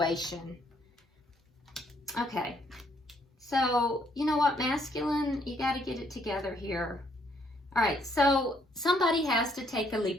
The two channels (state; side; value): normal; both; correlation 0.69